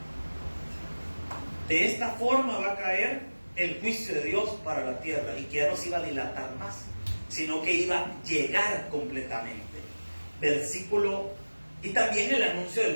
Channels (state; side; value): inverted; both; correlation -1.00